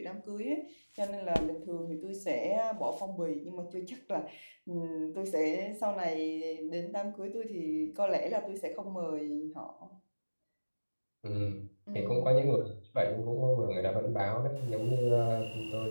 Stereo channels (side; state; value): both; inverted; correlation -1.00